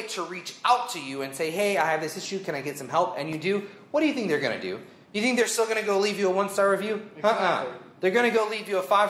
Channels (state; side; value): identical; both; correlation 1.00